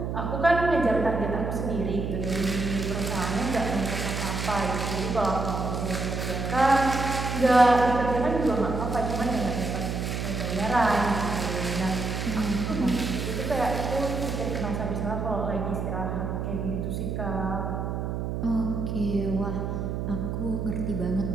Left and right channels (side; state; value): right; noise; hum, 3 dB below the sound